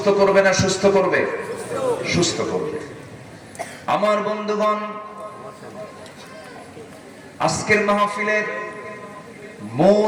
করবে না সুস্থ করবে? সুস্থ করবে। আমার বন্ধুগণ, আজকের মাহফিলের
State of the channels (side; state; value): both; identical; correlation 1.00